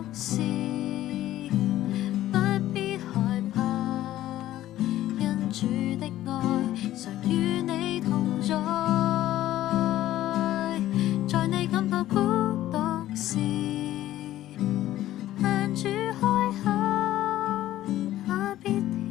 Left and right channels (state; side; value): quieter; right; 14.0 dB